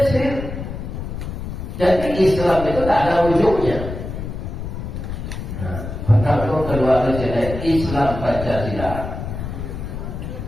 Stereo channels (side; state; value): left; noise; rumble, 7 dB below the sound